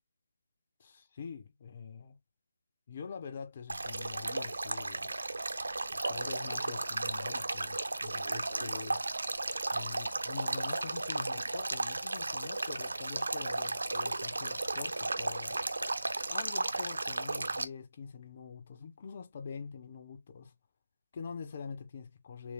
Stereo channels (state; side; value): inverted; both; correlation -0.94